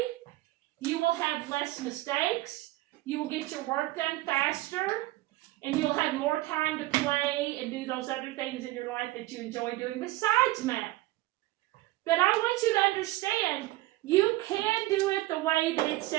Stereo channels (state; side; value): quieter; left; 18.4 dB